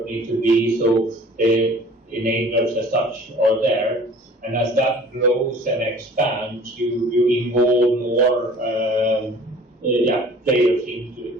needs to be, so the enablers as such are there. And as that grows and expands, you involve more players into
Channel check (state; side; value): normal; both; correlation 0.48